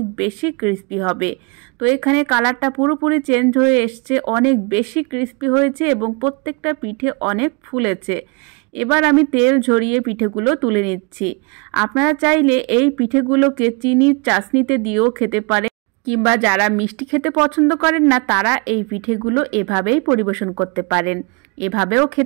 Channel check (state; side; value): quieter; left; 30.9 dB